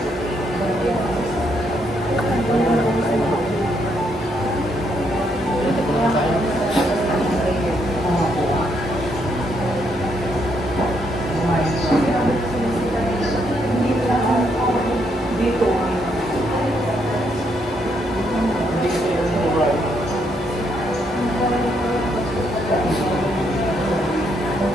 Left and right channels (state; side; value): normal; both; correlation 0.75